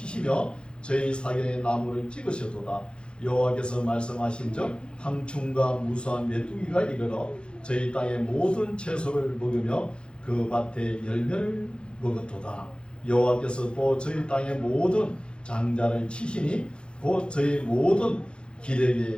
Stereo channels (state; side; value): late; right; 0.055 ms